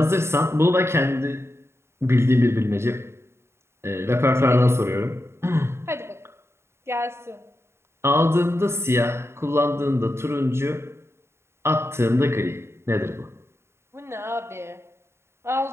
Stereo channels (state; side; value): late; left; 0.12 ms